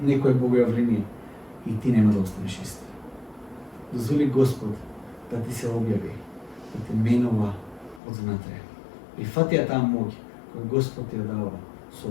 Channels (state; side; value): drops out; right; at 8.0 s